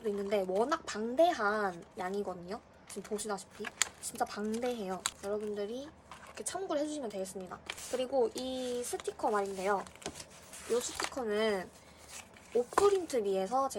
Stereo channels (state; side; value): identical; both; correlation 1.00